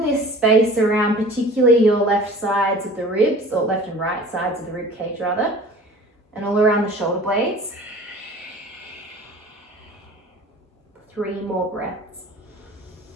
space around particularly your left sides of the ribs, or left and right sides of the rib cage rather, and all around the shoulder blades. 3 more breaths.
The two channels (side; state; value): both; normal; correlation 0.44